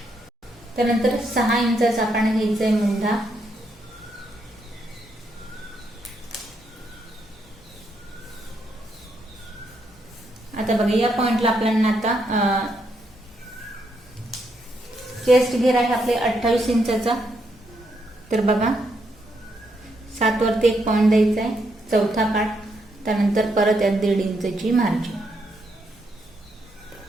त्यानंतर 6 इंचाचा आपण घ्यायचा आहे मुंढा. आता बघा या पॉइंटला आपल्याला आता चेस्ट घेर आहे आपले 28 इंचाचा. तर बघा 7 वरती एक पॉइंट द्यायचा आहे, चौथा पार्ट. त्यानंतर परत यात 1.5 इंचची मार्जिन.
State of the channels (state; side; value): normal; both; correlation 0.78